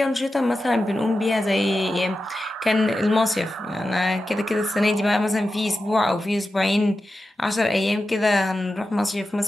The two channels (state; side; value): normal; both; correlation 0.92